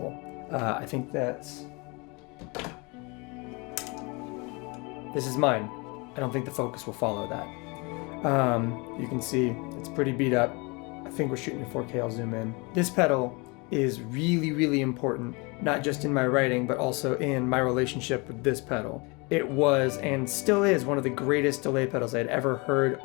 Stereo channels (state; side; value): quieter; right; 28.6 dB